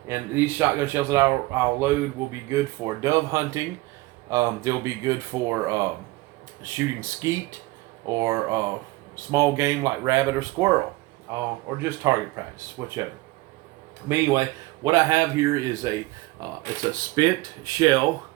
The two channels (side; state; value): left; quieter; 20.5 dB